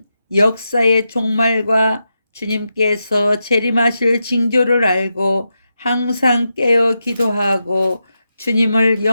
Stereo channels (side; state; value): both; inverted; correlation -0.87